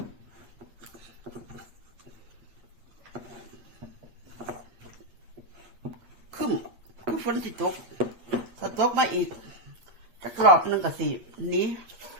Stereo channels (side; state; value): left; late; 8.5 ms